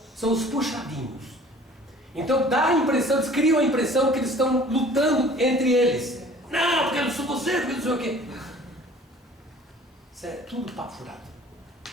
são os puxadinhos. Então dá a impressão, eles criam a impressão que eles estão lutando entre eles. Não, porque eu não sou você, porque eu não sei o quê. Isso é tudo papo furado.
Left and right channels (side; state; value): both; normal; correlation 0.50